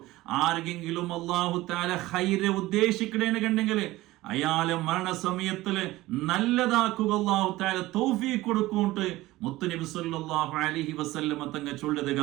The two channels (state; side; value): quieter; left; 18.0 dB